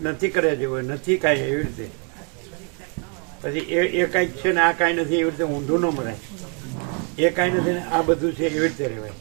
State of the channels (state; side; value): quieter; left; 39.1 dB